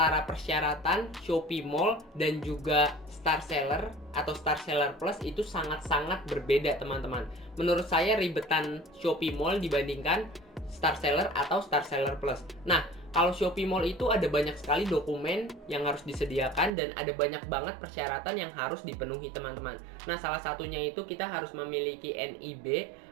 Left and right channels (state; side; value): drops out; left; at 16.7 s